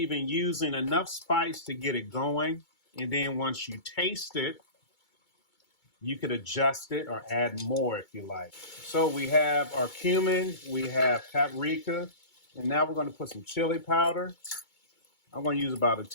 in using enough spice to get it going. And then once you taste it, You could adjust it or add more if you like. So we have our cumin, we have paprika, and now we're going to put some chili powder. I'm going to use about a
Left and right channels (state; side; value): late; right; 2.2 ms